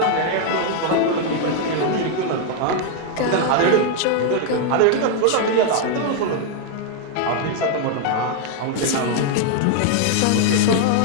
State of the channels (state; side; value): different; both; correlation 0.00